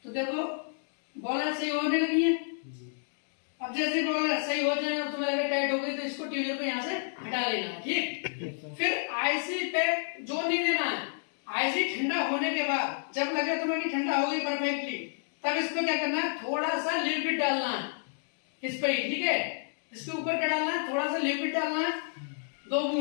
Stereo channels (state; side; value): silent; right; digital silence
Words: तो देखो बॉल सही होने लगी है। अब जैसे बॉल सही हो जाए और तुम्हें लगे टाइट हो गई, तो इसको ट्यूजर को यहाँ से हटा लेना है। ठीक, फिर आईसी पे जोर नहीं देना है। आईसी ठंडा होने के बाद जब लगे तुम्हें कि ठंडा हो गई परफेक्टली, तब इस पे क्या करना है, थोड़ा सा लिक्विड डालना है इस पे ही। ठीक है, इसके ऊपर क्या डालना है, थोड़ा सा लिक्विड डालना है, 2